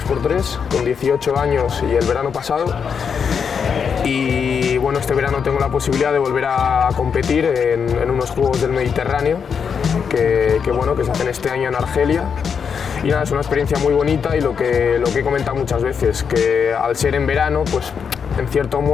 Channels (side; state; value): right; quieter; 6.6 dB